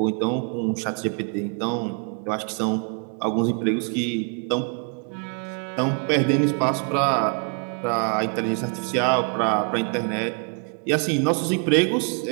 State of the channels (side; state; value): left; quieter; 39.2 dB